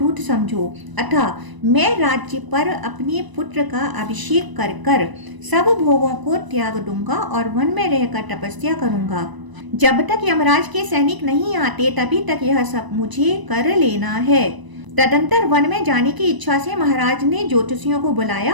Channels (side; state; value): left; late; 1.0 ms